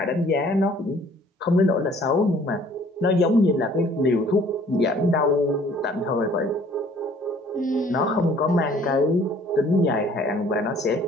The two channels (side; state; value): both; normal; correlation 0.56